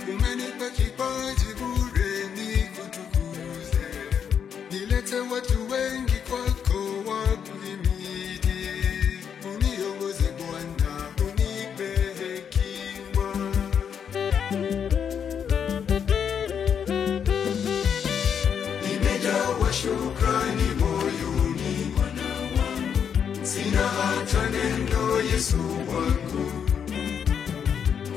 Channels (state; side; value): quieter; right; 7.7 dB